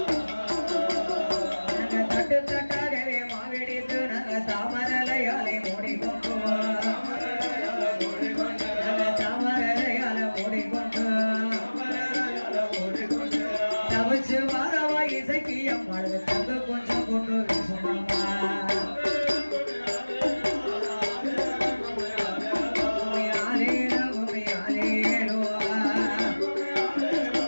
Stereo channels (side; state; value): both; inverted; correlation -1.00